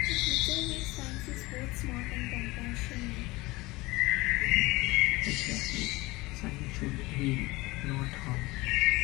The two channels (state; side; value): quieter; right; 21.6 dB